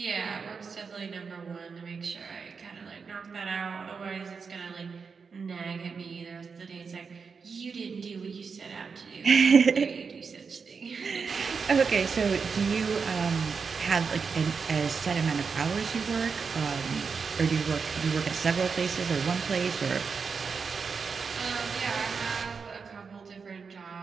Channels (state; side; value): quieter; left; 5.4 dB